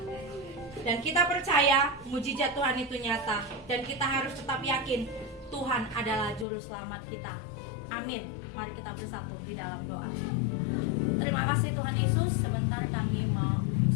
dan kita percaya mujizat Tuhan itu nyata. Dan kita harus tetap yakin Tuhan adalah juru selamat kita. Amin. Mari kita bersatu di dalam doa. Terima kasih Tuhan Yesus. Sebentar kami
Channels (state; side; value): drops out; right; at 6.5 s